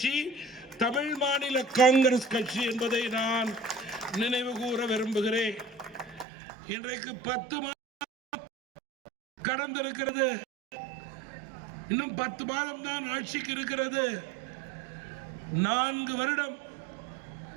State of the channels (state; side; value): drops out; left; at 6.2 s